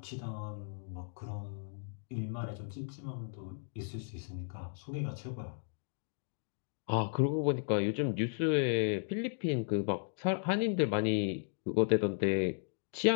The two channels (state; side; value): silent; right; digital silence